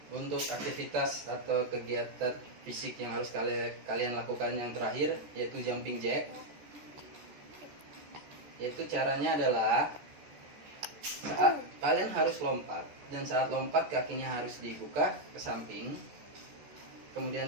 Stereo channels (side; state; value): left; late; 14 ms